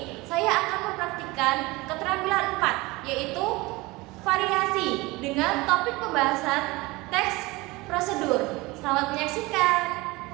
saya akan mempraktikkan keterampilan 4, yaitu variasi dengan topik pembahasan teks prosedur. Selamat menyaksikan.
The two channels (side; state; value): left; quieter; 22.3 dB